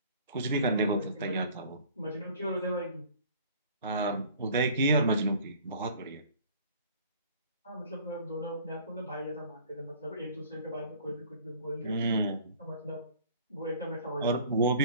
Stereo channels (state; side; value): inverted; both; correlation -0.50